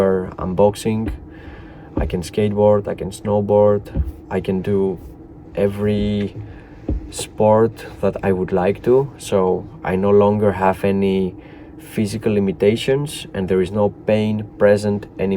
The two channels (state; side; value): identical; both; correlation 1.00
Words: I'm boxing. I can skateboard, I can snowboard, I can do every sport that I would like to. So I no longer have any physical limitations and there is no pain present